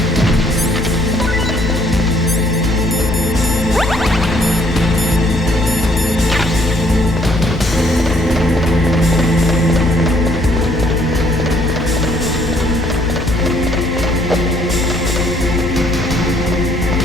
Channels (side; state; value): both; normal; correlation 0.64